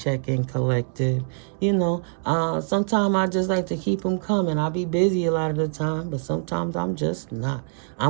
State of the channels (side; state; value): left; silent; 62 dB below the other